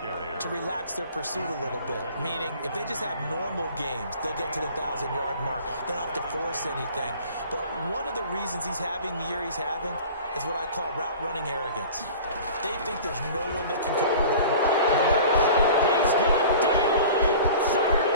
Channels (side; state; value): both; inverted; correlation -0.42